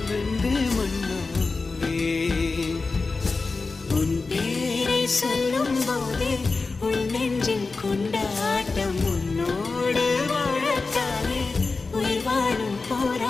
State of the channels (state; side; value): quieter; right; 4.0 dB